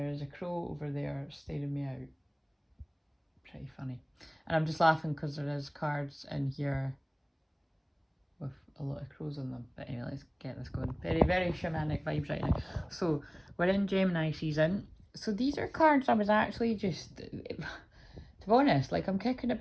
is a crow over there staring me out. Pretty funny. And I'm just laughing because there is cards in here with a lot of crows on them. But anyway, let's get this going. Very, very shamanic vibes right now. So we're in Gemini season. So these are cards I was actually just, to be honest, like I'm kicking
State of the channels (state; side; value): identical; both; correlation 1.00